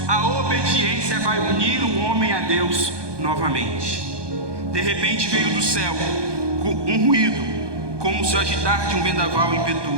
a obediência vai unir o homem a Deus novamente. De repente veio do céu um ruído, como se o agitar de um vendaval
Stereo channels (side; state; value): left; late; 1.2 ms